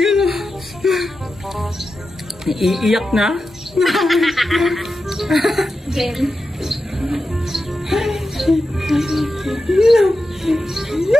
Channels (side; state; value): both; normal; correlation 0.91